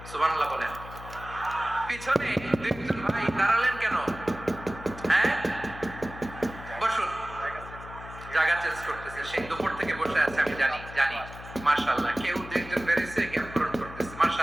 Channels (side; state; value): left; noise; hum, 14 dB below the sound